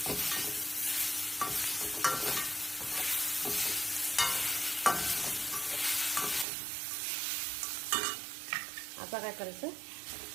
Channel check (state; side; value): drops out; left; at 6.5 s